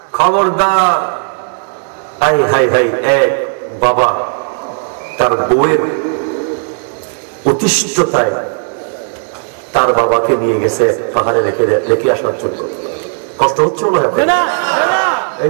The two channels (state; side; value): silent; left; 65 dB below the other